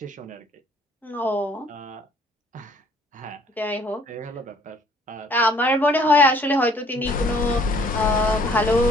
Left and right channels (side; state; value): both; normal; correlation 0.59